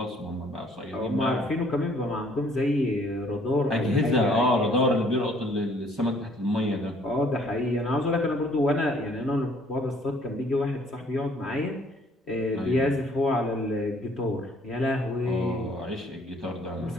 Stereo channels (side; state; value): both; normal; correlation 0.61